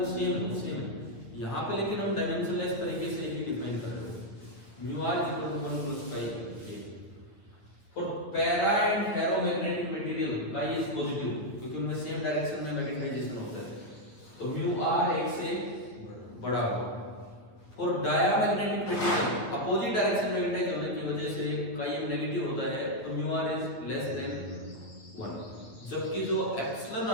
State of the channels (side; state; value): right; late; 9.1 ms